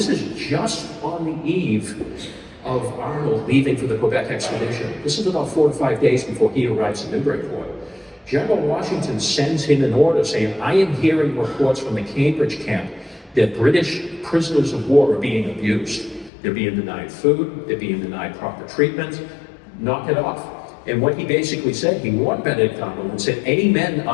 is just on the eve of Arnold leaving for the Quebec expedition. This is about 4 to 5 days before he arrives in Newburyport. General Washington sends him an order saying, I am hearing reports from the Cambridge camp that British prisoners of war are being abused. They're being denied food, they're being denied proper treatment, knock it off. And what he basically said, he warned Benedict Arnold and said, any men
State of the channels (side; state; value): right; drops out; at 16.3 s